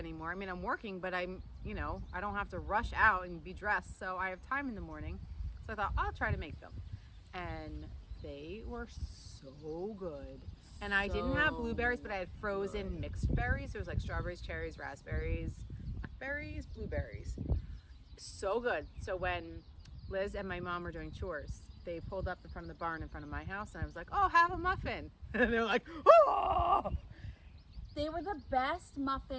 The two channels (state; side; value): identical; both; correlation 1.00